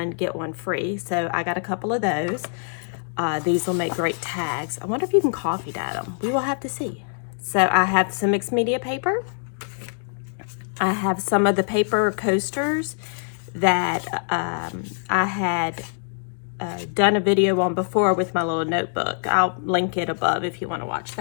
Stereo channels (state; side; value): silent; right; digital silence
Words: get one free. So I got a couple of those. These will make great tags. I wonder if you can coffee dye them. We will have to see. So I have some mixed media paper. I have some of the paper coasters that I had done a video on before with my little notebook. I'll link it above if you want to watch